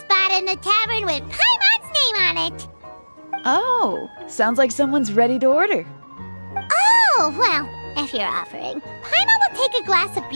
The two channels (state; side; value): inverted; both; correlation -1.00